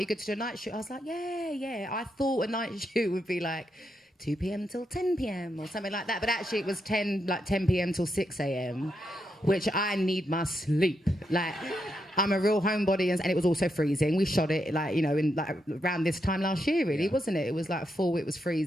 good to do a night shoot? I was like, yeah. I thought a night shoot would be like 2 p.m. till 10 p.m. or something like that. But actually it was 10 p.m. till 6 a.m., which I need my sleep. Like, I'm a real homebody, and it was also freezing. We shot it like, you know, in like around this time last year, really, wasn't it? It was like fall, it was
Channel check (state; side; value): normal; both; correlation 0.82